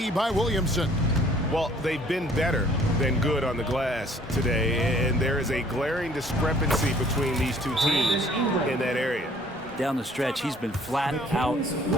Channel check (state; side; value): normal; both; correlation 0.57